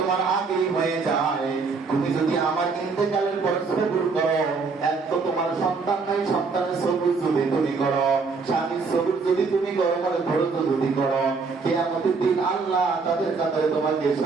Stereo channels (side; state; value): left; quieter; 4.6 dB